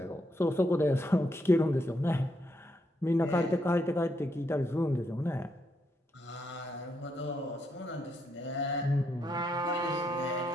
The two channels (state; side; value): normal; both; correlation 0.78